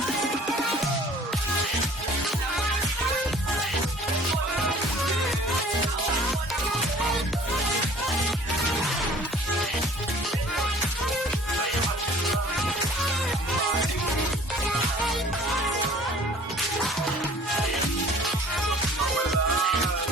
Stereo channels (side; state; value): both; normal; correlation 0.50